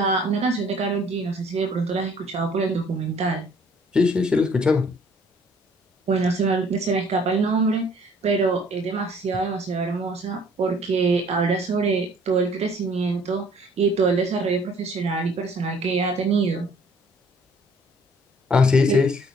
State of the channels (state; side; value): normal; both; correlation 0.57